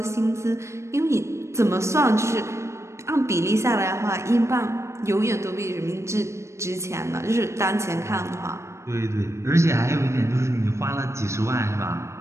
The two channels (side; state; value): left; late; 0.13 ms